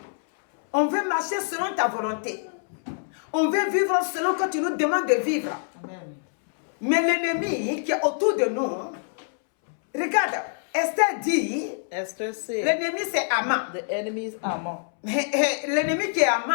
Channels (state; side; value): silent; right; 61 dB below the other